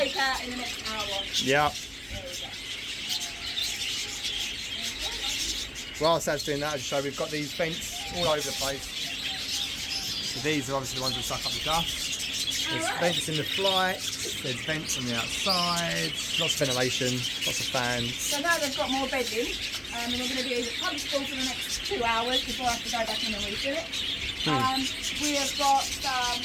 out in the next hour. Yeah. There we go. Whilst that's doing that, I'll show we've got these vents all over the place. So these are obviously the ones that suck up the dust. There's vents in the flight, there's vents on the outside, lots of ventilation, lots of fans. So now they've got more bedding, and they're going to be comfortable for the next 2 hours before I have to go back in and refill it. We have got some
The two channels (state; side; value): identical; both; correlation 1.00